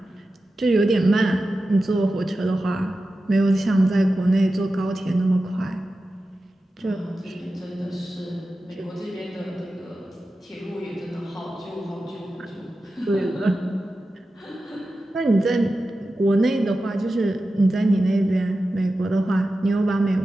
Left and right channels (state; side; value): normal; both; correlation 0.93